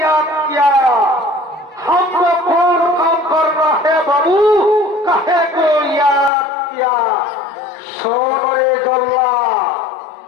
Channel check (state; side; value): drops out; right; at 6.3 s